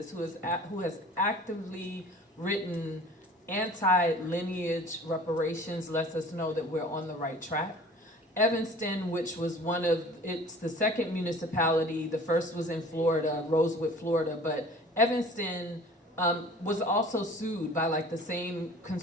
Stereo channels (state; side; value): normal; both; correlation 0.45